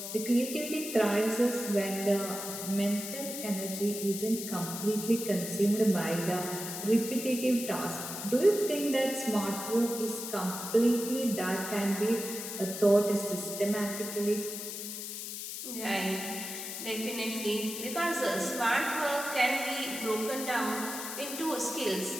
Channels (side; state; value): left; noise; hiss, 7 dB below the sound